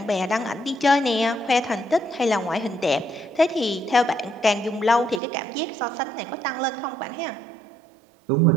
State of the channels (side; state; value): left; drops out; at 5.2 s